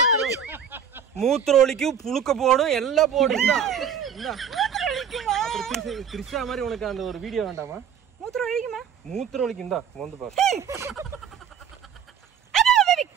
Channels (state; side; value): quieter; left; 7.6 dB